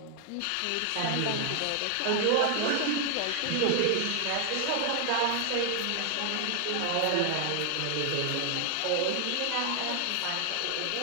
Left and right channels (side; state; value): both; different; correlation 0.00